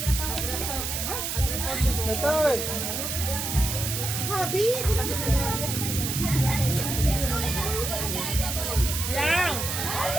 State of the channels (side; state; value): right; noise; hiss, 3 dB below the sound